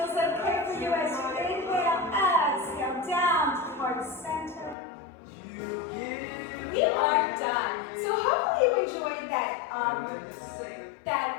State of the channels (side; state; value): right; drops out; at 4.8 s